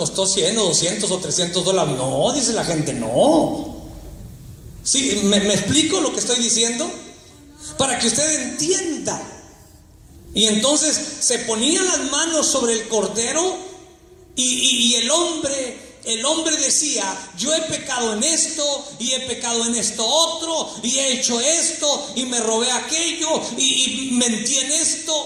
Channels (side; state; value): both; identical; correlation 1.00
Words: 100 o 200 o $300. No, dice la gente, no. Sí, ¿me explico lo que estoy diciendo? Para que usted entienda. Y entonces se ponían las manos sobre el cordero y el hombre decía, yo he pecado en esto y he pecado en esto otro y he hecho esto y me robé aquello y mentí en esto.